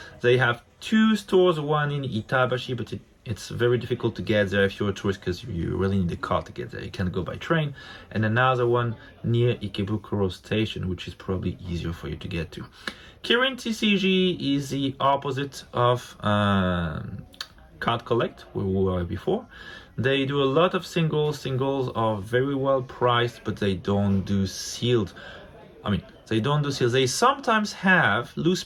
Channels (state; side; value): identical; both; correlation 1.00